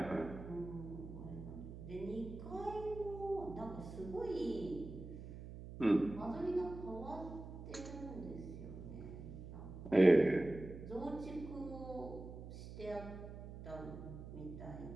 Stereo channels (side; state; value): right; noise; hum, 11 dB below the sound